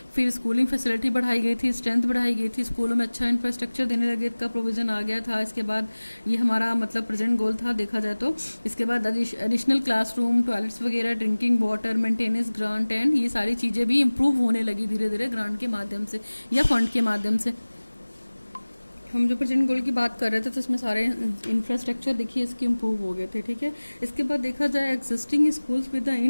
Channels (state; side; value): inverted; both; correlation -1.00